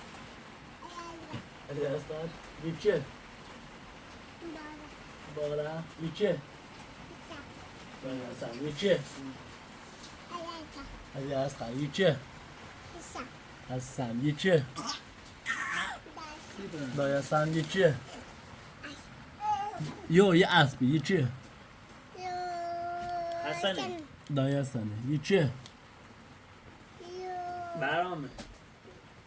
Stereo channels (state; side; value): identical; both; correlation 1.00